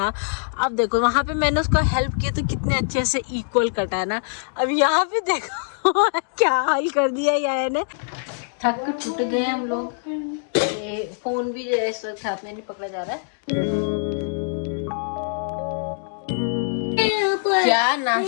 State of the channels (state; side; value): silent; right; digital silence